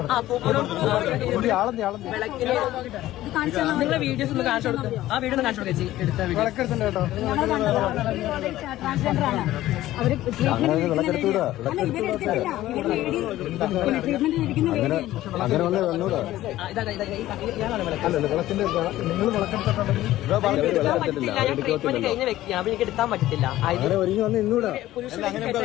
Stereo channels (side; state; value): right; quieter; 15.0 dB